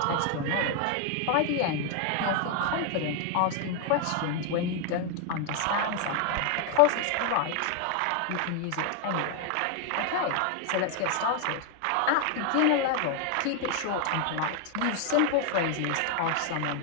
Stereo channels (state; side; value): different; both; correlation 0.00